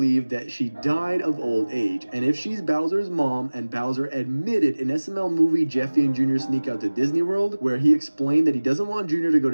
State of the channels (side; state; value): both; inverted; correlation -1.00